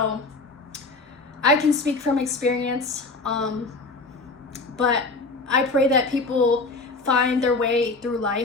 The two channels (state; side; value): quieter; right; 3.6 dB